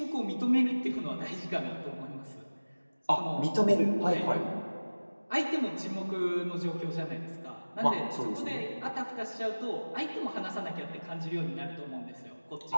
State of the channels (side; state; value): both; inverted; correlation -1.00